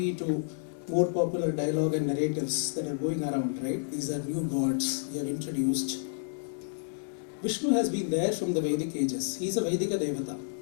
to more popular dialogue and narratives that are going around, right? These are new gods we have introduced. Vishnu has been there from the Vedic ages. He is a Vedika Devata.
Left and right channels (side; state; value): right; silent; 58 dB below the other